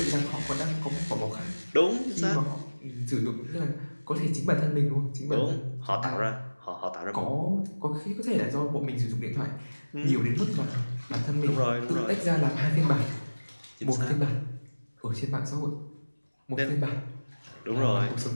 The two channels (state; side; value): inverted; both; correlation -1.00